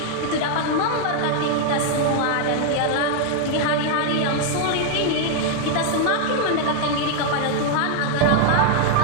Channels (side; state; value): both; different; correlation 0.00